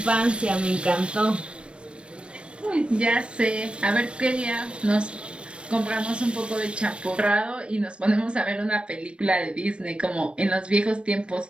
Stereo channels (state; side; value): late; left; 0.058 ms